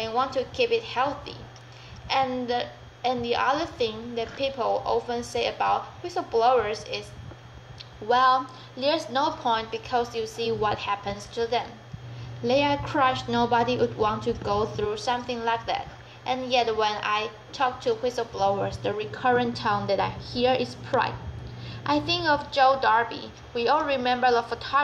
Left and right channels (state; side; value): identical; both; correlation 1.00